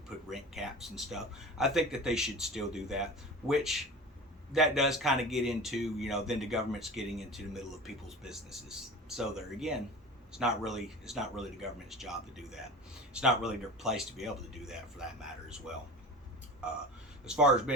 put rent caps and stuff, I think that they should still do that, which that does kind of get into, you know, then the government's getting into the middle of people's businesses. So there again, it's not really the government's job to do that. It's not really their place to be able to do that, for that matter as well. as far as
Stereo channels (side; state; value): both; normal; correlation 0.34